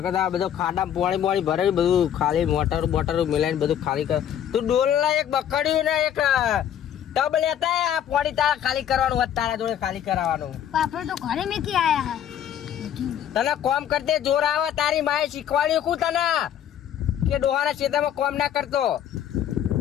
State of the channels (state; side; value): quieter; right; 10.0 dB